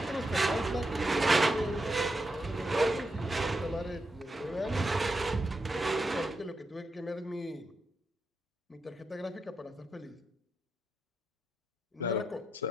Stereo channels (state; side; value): normal; both; correlation 0.85